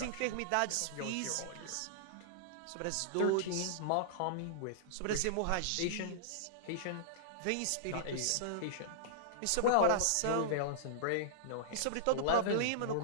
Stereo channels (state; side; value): different; both; correlation -0.02